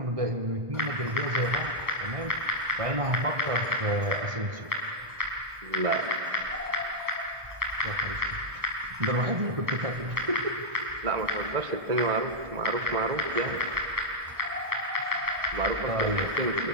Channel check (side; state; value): left; late; 1.4 ms